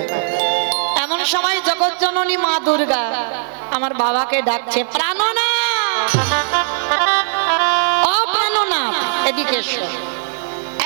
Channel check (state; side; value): silent; left; digital silence